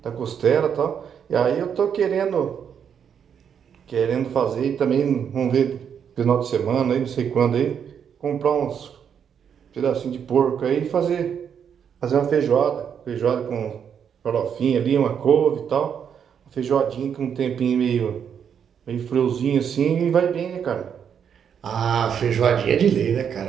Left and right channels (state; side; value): quieter; left; 7.8 dB